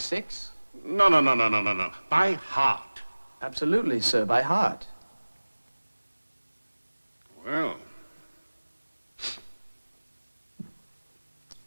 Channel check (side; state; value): both; inverted; correlation -1.00